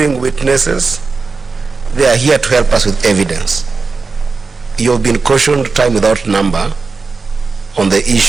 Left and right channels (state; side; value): quieter; left; 4.3 dB